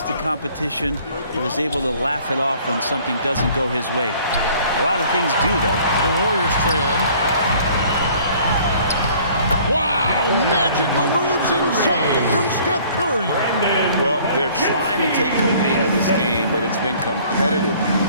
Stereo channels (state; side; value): inverted; both; correlation -0.54